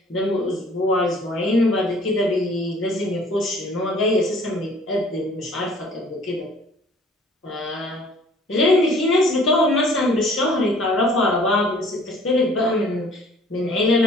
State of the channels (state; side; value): normal; both; correlation 0.54